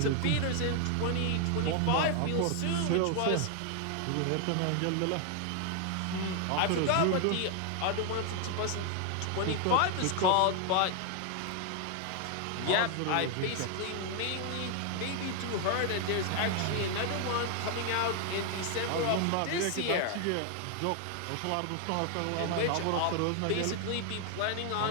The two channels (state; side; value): different; both; correlation 0.00